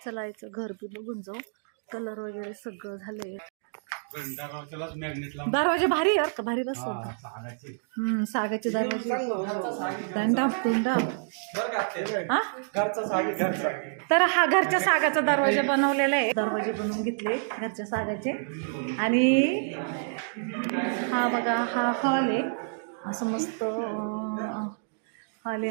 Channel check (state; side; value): silent; left; digital silence